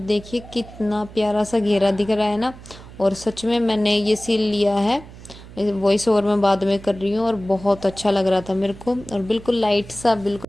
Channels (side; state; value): right; noise; hum, 18 dB below the sound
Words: कितना प्यारा सा घेरा दिख रहा है ना। और सच में मैंने ये सिल लिया है, वॉइस ओवर में बाद में कर रही हूँ। और बहुत अच्छा लग रहा था मेरे को, और बिल्कुल लाइट सा, बिल्कुल।